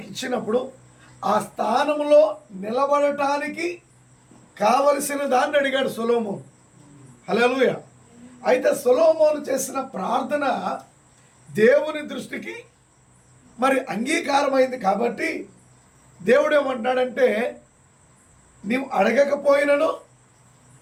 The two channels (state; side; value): identical; both; correlation 1.00